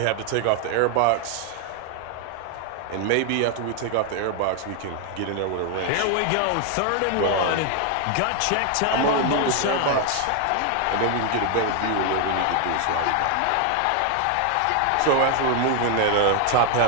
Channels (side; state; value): both; different; correlation 0.00